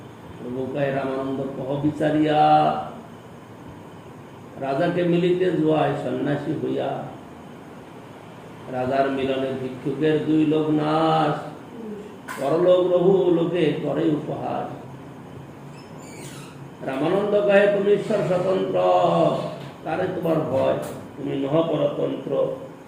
প্রভু কহে রামানন্দ কহ বিচারিয়া, রাজাকে মিলিতে জুয়ায় সন্ন্যাসী হইয়া। রাজার মিলনে ভিক্ষুকের দুই লোক নাশ, পরলোক রঘু লোকে করে উপহাস। রামানন্দ কহে তুমি ঈশ্বর স্বতন্ত্র, তারে তোমার ভয়, তুমি নহ পরতন্ত্র।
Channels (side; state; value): both; identical; correlation 1.00